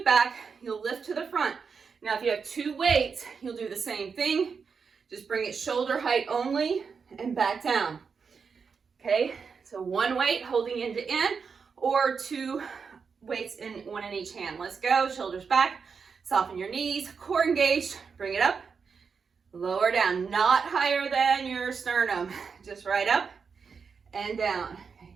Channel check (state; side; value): quieter; left; 5.7 dB